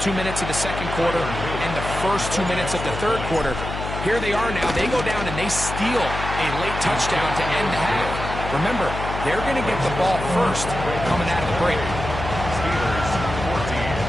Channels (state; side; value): noise; left; hum, 6 dB below the sound